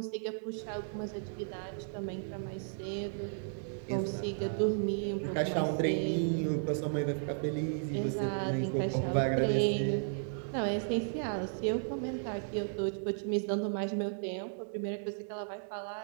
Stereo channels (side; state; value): left; silent; digital silence